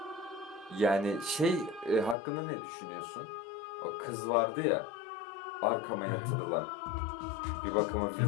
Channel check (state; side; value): drops out; right; at 2.1 s